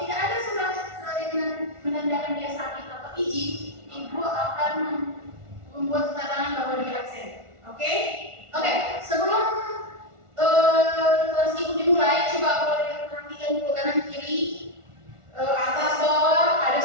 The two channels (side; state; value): left; late; 1.4 ms